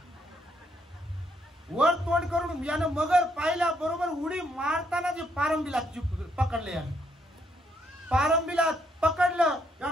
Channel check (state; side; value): normal; both; correlation 0.73